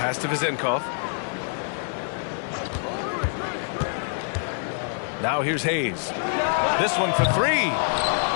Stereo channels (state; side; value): silent; right; 56 dB below the other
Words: to Vezenkov. Now here's Hayes. This one for three.